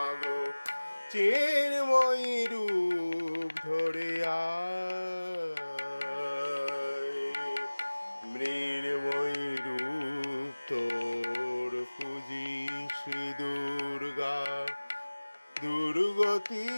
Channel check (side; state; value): both; inverted; correlation -1.00